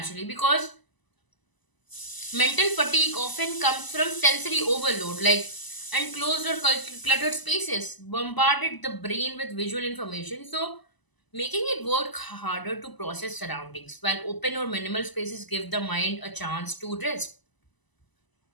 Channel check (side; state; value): right; late; 1.0 ms